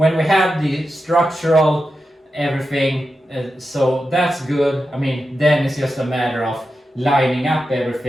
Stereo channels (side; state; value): both; normal; correlation 0.90